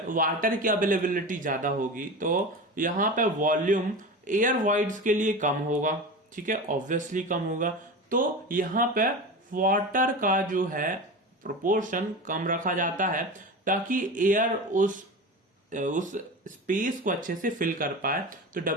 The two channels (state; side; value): normal; both; correlation 0.28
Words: वाटर की अवेलेबिलिटी ज्यादा होगी तो यहां पे वॉल्यूम एयर वॉइड्स के लिए कम होगा। ठीक है, ऑब्वियसली कम होगा। तो यहां पे वाटर का जो है प्रोपोर्शन कम रखा जाता है ताकि एयर उस स्पेस को अच्छे से फिल कर पाए। तो